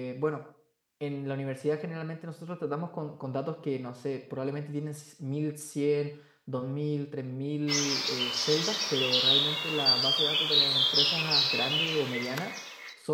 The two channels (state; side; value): identical; both; correlation 1.00